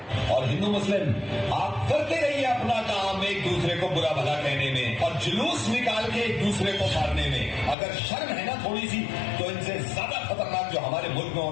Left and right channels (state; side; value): drops out; right; at 7.8 s